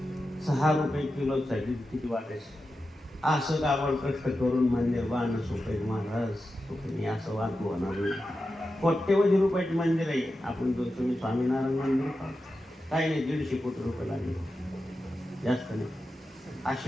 6 रुपये किलोसाठी किती वाटायचं. असं काबड कष्ट करून मंदिर बांधणं सोपे महाराज सोपे असं वाद होणार नाही. कोट्यवधी रुपयाचे मंदिर आहे. आपण जो तुम्ही स्वामीनारायण मंदिर पाहा, काही नाही 150 कोटी रुपये लागले, जास्त नाही.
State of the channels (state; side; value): normal; both; correlation 0.91